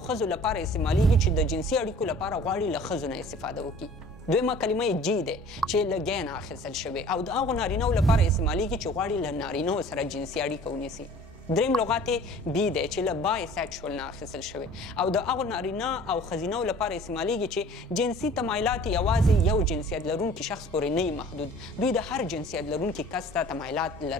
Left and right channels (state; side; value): normal; both; correlation 0.48